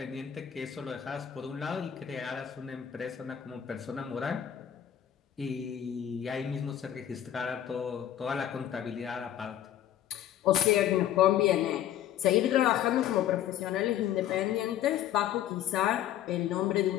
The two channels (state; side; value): quieter; right; 11.0 dB